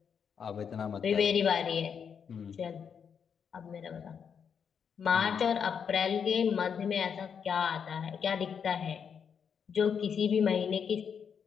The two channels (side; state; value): right; quieter; 7.1 dB